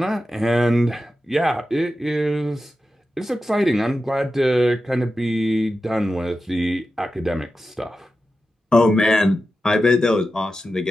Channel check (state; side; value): normal; both; correlation 0.91